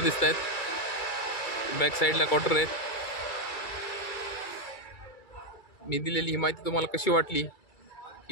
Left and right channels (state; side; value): late; right; 2.3 ms